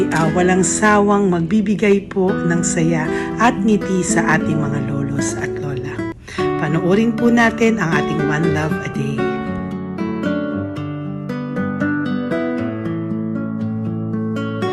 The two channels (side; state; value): both; identical; correlation 1.00